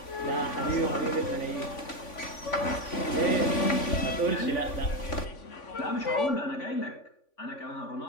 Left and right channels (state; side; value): late; right; 3.5 ms